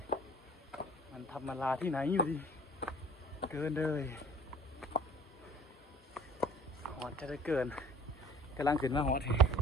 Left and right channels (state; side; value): normal; both; correlation 0.47